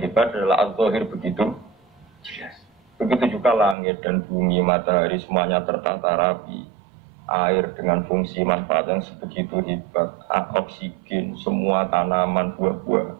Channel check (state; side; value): drops out; left; at 3.8 s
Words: adalah az-zahir begitu jelas. Begitu juga langit dan bumi, matahari semuanya tertata rapi. Air dengan fungsi manfaat yang sebegitu hebat, oksigen, semua tanaman, buah-buah.